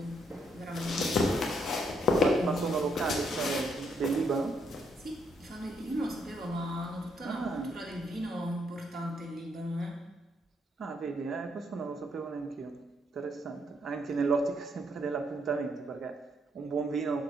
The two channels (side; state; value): both; normal; correlation 0.74